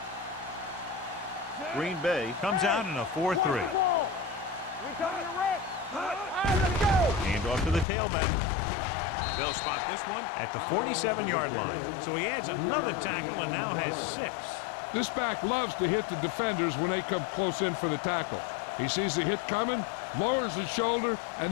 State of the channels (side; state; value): right; drops out; at 7.9 s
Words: Green Bay comes out in a 4-3. Hand off to the tailback. They'll spot this one at the 47-yard line. So he adds another tackle and now has 6. This back loves to hit the defenders when they come close in for the tackle. He sees the hit coming, lowers his shoulder, and